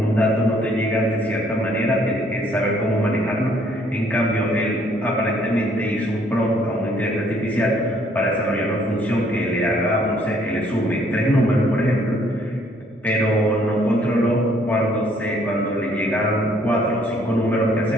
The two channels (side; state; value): both; normal; correlation 0.64